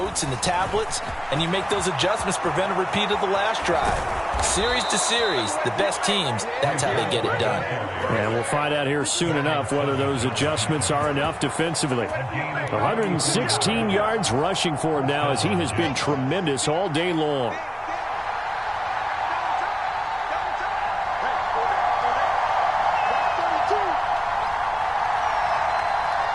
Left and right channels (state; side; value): identical; both; correlation 1.00